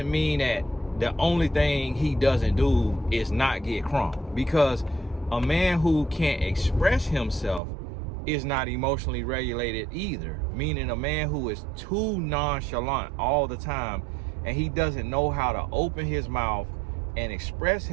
mean that the only thing he doesn't do is not get crunk. Because a man who can't express himself is not emotionally regulated either. Meaning a man who is too nonchalant all the time and he doesn't know how to open his mouth and express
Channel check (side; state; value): left; drops out; at 7.6 s